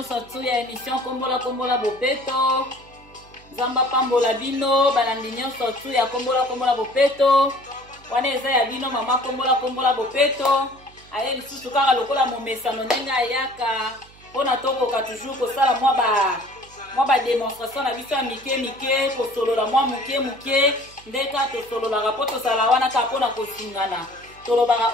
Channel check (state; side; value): noise; right; hum, 25 dB below the sound